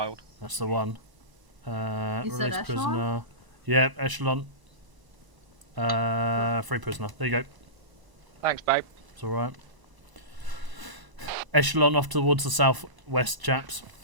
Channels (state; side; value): late; left; 1.0 ms